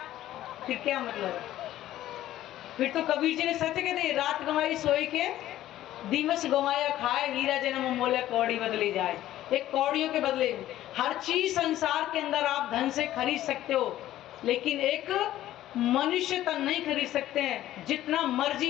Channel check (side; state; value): right; quieter; 13.6 dB